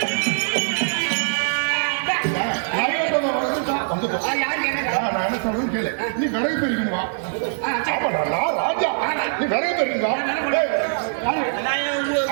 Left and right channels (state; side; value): silent; left; 57 dB below the other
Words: நீ விரைவு பெறுவா ராஜா, நீ விரைவு பெறுங்க.